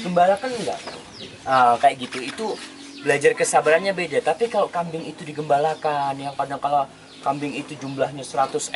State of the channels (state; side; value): identical; both; correlation 1.00